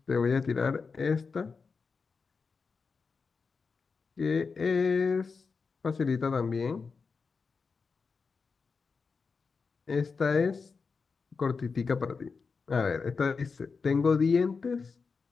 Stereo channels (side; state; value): right; quieter; 4.9 dB